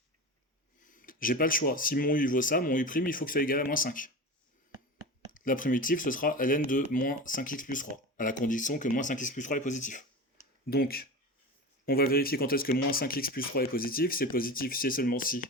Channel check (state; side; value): normal; both; correlation 0.28